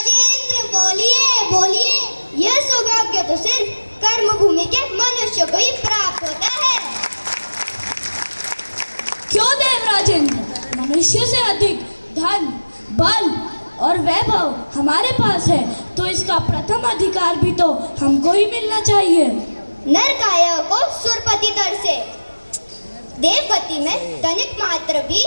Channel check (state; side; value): inverted; both; correlation -1.00